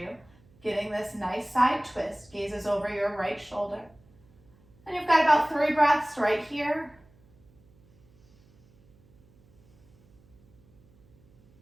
getting this nice side twist. Gazes over your right shoulder. And you've got about 3 breaths right here.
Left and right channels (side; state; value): right; noise; hum, 30 dB below the sound